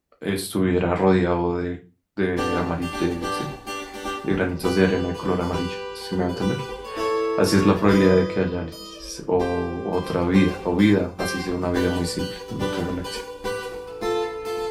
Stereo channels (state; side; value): identical; both; correlation 1.00